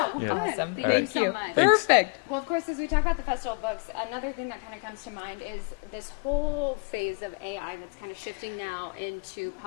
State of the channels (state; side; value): quieter; right; 33.2 dB